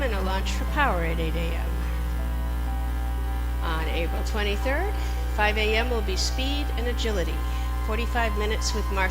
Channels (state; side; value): identical; both; correlation 1.00